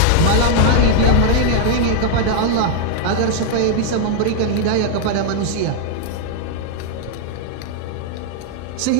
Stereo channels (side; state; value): both; different; correlation 0.00